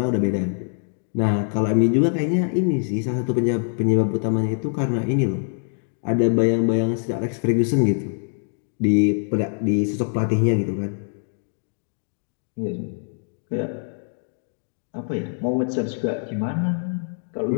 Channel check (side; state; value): right; silent; 58 dB below the other